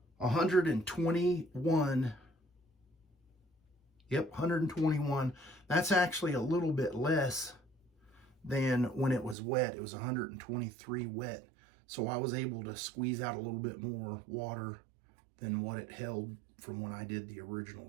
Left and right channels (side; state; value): left; drops out; at 9.3 s